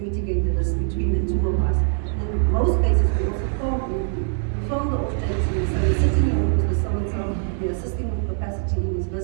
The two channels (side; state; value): left; silent; 57 dB below the other